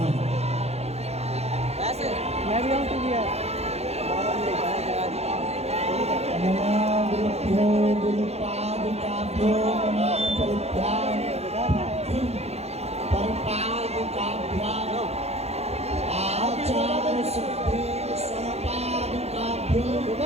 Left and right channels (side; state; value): left; late; 0.31 ms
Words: ऐसे मैं भी आऊँ तू भी है। नमामृत्यो गुरुपादुकाभ्यो नमः परित्याग परपादुकाभ्याम आचार्य सिद्धि स्वपादुकाभ्यो